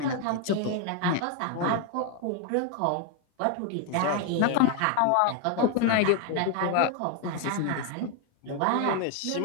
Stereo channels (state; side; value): different; both; correlation 0.01